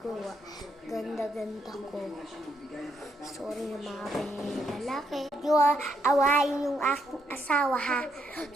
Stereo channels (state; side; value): normal; both; correlation 0.76